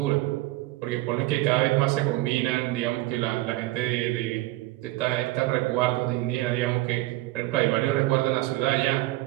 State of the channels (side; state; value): left; quieter; 18.3 dB